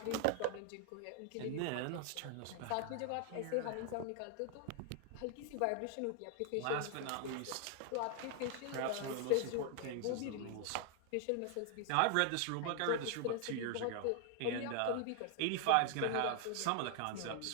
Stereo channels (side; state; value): both; different; correlation 0.00